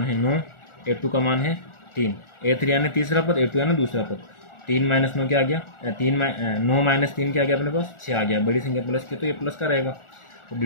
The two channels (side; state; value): right; late; 1.4 ms